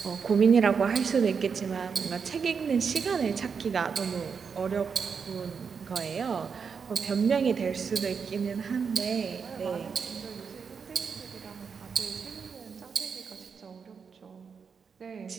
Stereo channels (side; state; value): left; quieter; 6.0 dB